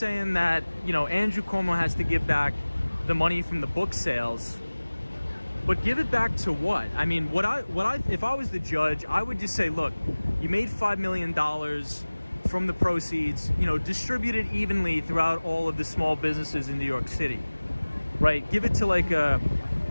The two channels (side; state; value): both; inverted; correlation -1.00